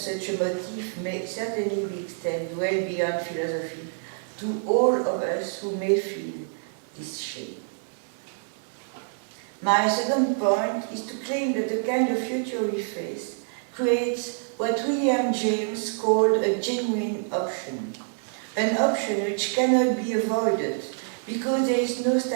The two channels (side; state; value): left; silent; digital silence